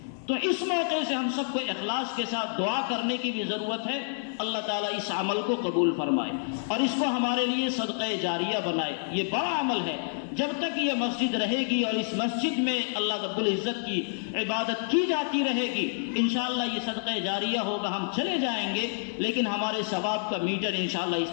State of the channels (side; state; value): right; silent; digital silence